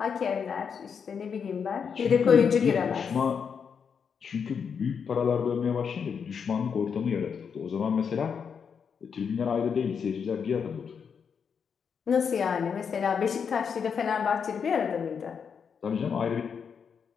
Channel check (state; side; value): quieter; right; 6.6 dB